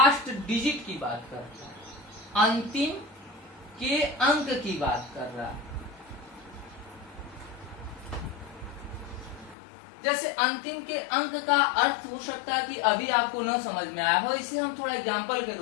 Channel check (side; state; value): right; drops out; at 9.6 s